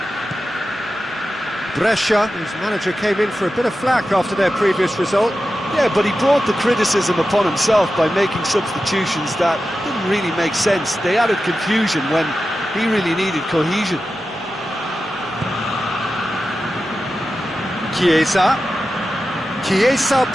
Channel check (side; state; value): both; normal; correlation 0.92